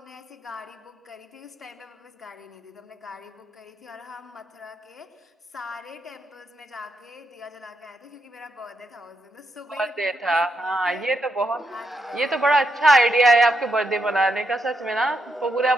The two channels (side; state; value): both; normal; correlation 0.81